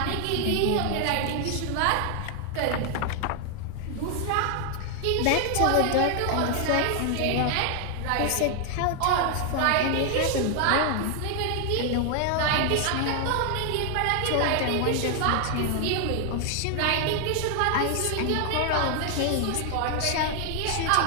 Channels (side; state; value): both; different; correlation 0.00